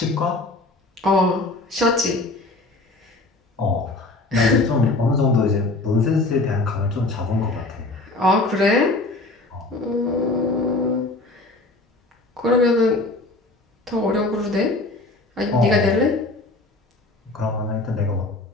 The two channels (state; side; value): quieter; right; 3.1 dB